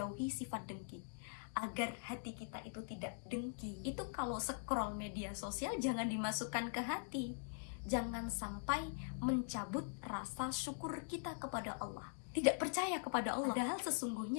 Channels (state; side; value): silent; right; digital silence